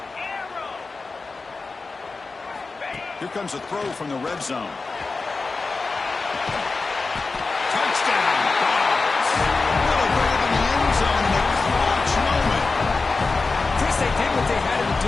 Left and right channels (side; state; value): right; quieter; 4.0 dB